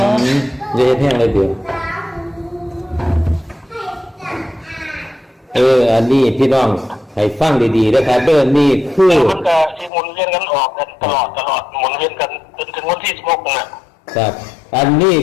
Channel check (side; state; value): right; drops out; at 9.9 s